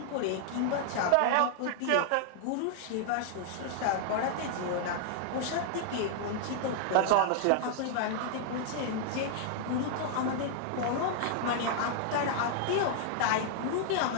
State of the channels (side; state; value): both; different; correlation -0.01